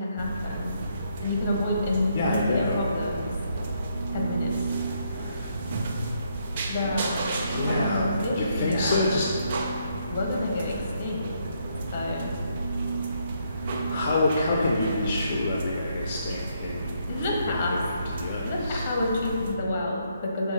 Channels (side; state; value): both; inverted; correlation -0.74